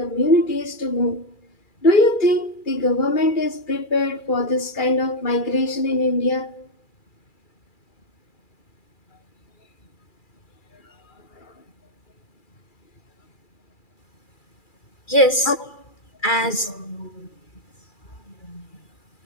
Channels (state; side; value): late; right; 2.4 ms